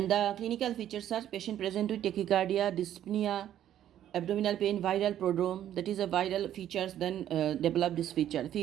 the clinical features are patient present with tachycardia, dyspnea, abdominal pain, viral prodrome, that is a viral features, then develop this feature.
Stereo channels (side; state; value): left; quieter; 11.3 dB